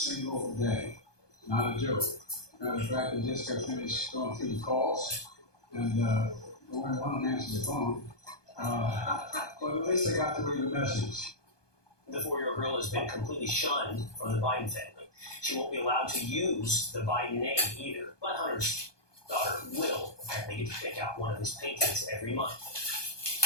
day. Not a joke. Matter of fact, I just got finished going through the calls, and only one will answer the phone. But at least I got to read the message. The 4-year-old girl has been completely shunned from the Biden family. She won't be allowed to use the Biden name either. But Hunter's daughter will apparently get to pick out one of his paintings every month.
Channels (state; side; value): late; right; 1.2 ms